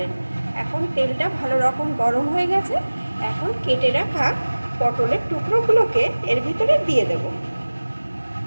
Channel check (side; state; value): both; inverted; correlation -1.00